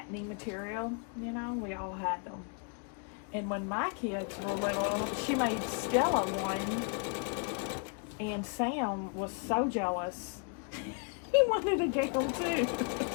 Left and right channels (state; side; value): quieter; right; 37.8 dB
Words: material. You know, we all had them. And when my kids were little, she made Stella one, and Sam was so jealous. He wanted to get them too.